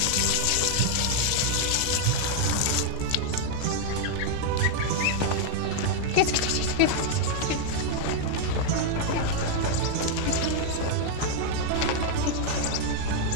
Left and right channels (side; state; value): both; different; correlation 0.00